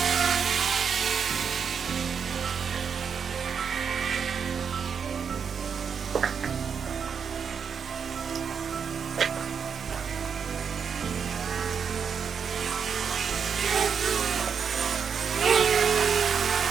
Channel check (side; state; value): left; quieter; 6.7 dB